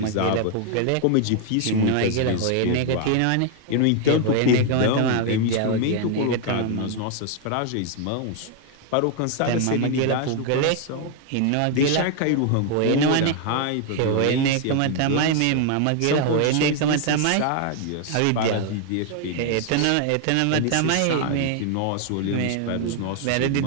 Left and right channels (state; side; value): different; both; correlation 0.00